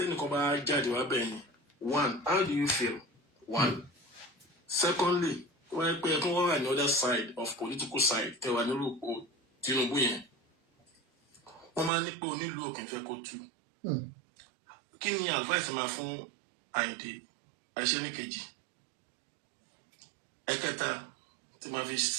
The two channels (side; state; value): left; drops out; at 11.9 s